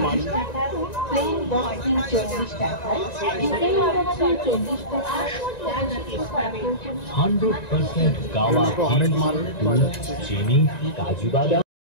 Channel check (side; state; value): right; late; 1.9 ms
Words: মাল। 100% গাওয়া হরেক মাল চিনি কাজু বাদাম।